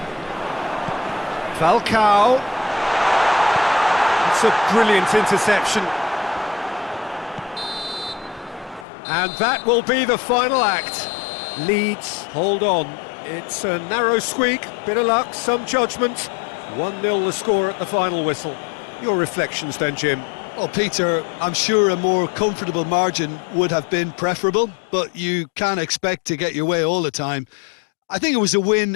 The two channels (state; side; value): drops out; right; at 8.8 s